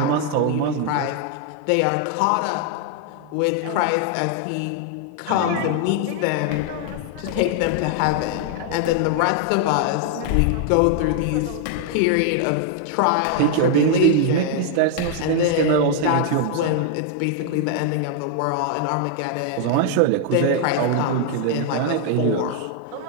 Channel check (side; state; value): both; different; correlation 0.00